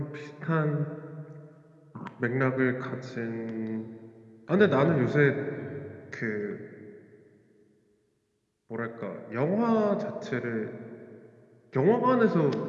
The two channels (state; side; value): identical; both; correlation 1.00